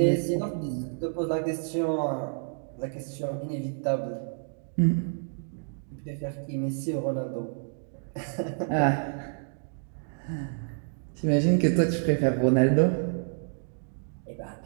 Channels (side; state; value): left; silent; digital silence